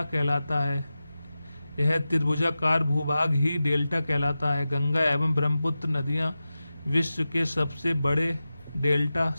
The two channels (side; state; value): both; inverted; correlation -0.94